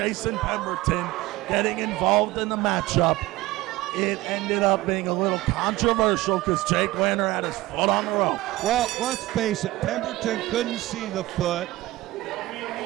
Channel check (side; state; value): left; quieter; 18.2 dB